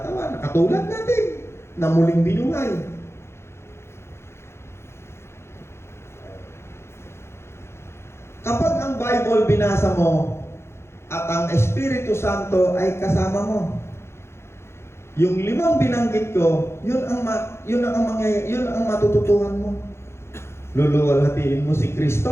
katulad natin, na muling binuhay. Kapag ang Bible binasa mo at ang Espiritu Santo ay kasama mo, yung 5 binanggit ko, yun ang matututuhan mo. Luluwalhatiin mo si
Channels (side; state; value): right; late; 0.12 ms